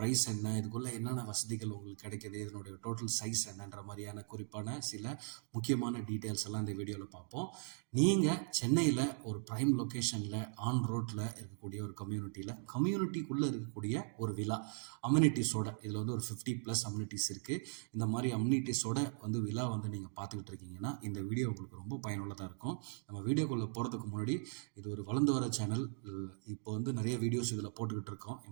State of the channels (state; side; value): silent; left; 52 dB below the other